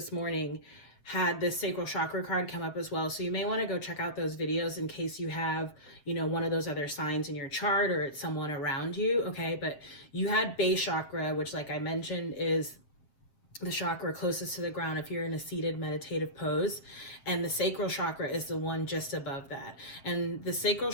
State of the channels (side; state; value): right; late; 7.5 ms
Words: morning had this sacral chakra card come up as well. So you may want to go check out those videos in case you have, one of those other signs in your chart or it's someone around you, okay? But you had base chakra, which like I mentioned is the chakra closest to the ground if you're in a seated meditative pose, and the sacral chakra is the one just above that. And the sacral